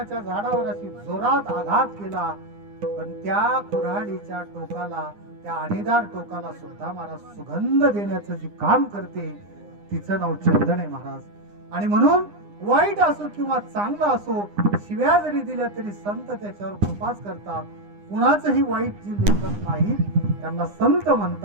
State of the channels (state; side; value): late; left; 9.8 ms